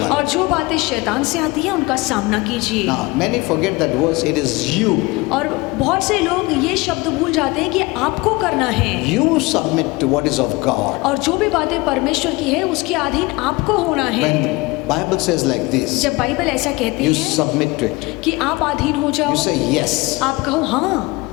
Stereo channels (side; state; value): right; quieter; 23.3 dB